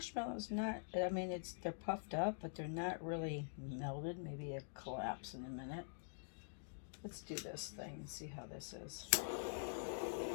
not, I mean, they're puffed up, but they're not really melted. Maybe they'll collapse in a minute. Let's do this thing and see how this is.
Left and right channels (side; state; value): right; silent; digital silence